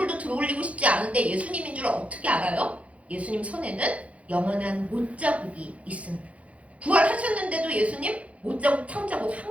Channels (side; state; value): left; late; 0.065 ms